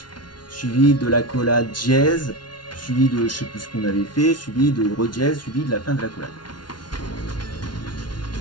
suivi de la collade dièse, suivi de je sais plus ce qu'on avait fait, suivi de redièse, suivi de la fin de la collade.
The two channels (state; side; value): late; right; 0.70 ms